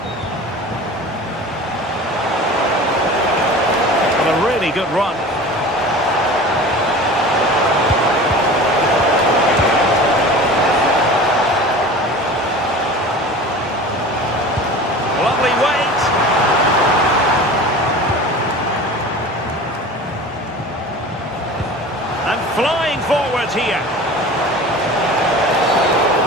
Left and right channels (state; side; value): normal; both; correlation 0.37